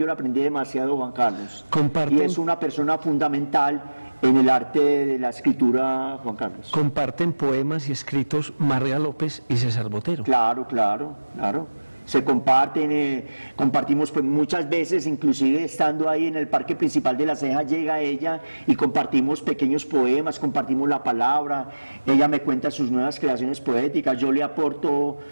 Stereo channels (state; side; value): inverted; both; correlation -1.00